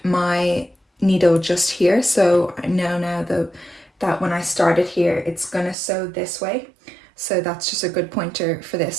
my needle just here, so I know now that when I started here it's gonna sew this way, so that's just a good pointer for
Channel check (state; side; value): drops out; left; at 5.8 s